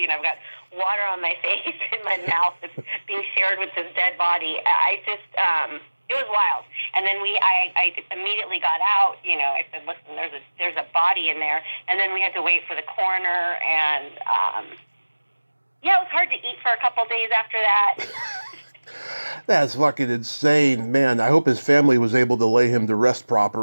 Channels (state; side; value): inverted; both; correlation -1.00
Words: got water on my face and my mouth that's being shared with this dead body. It was wild. And then I immediately got out. I said, listen, there's a body in there. And then we had to wait for the coroner. And it was hard to eat for a couple days after that. That's fucking insane, man. I hope his family was able to lay him to rest